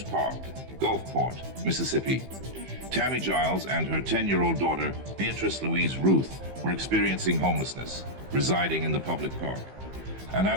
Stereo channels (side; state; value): left; late; 15 ms